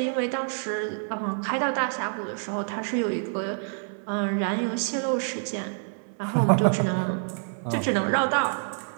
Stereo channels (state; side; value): silent; left; 60 dB below the other